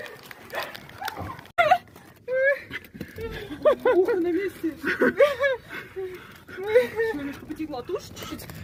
Ухо на месте. Немножко потекла тушь чуть-чуть.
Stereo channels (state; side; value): identical; both; correlation 1.00